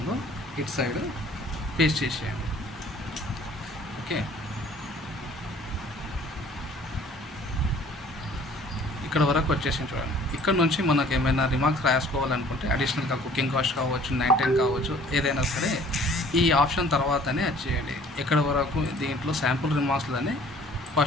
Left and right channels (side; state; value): both; normal; correlation 0.53